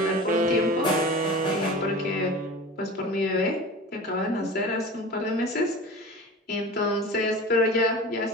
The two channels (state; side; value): normal; both; correlation 0.35